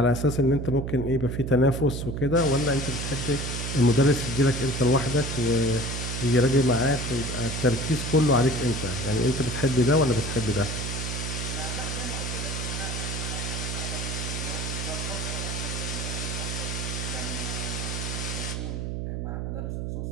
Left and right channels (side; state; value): right; noise; hum, 3 dB below the sound